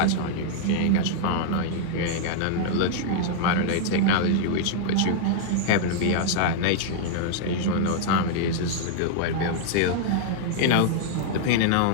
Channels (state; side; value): different; both; correlation -0.01